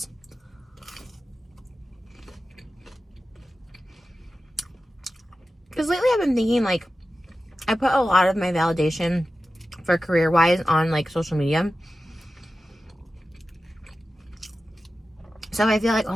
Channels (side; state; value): both; normal; correlation 0.94